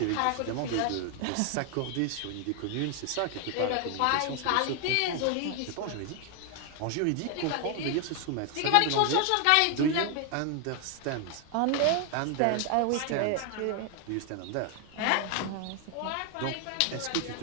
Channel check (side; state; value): both; different; correlation 0.00